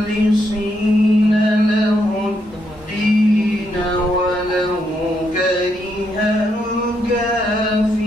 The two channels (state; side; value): normal; both; correlation 0.78